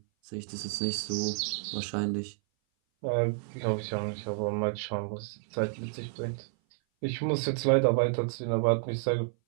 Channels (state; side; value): silent; left; 56 dB below the other